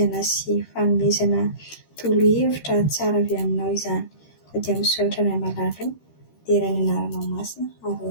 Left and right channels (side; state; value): right; late; 13 ms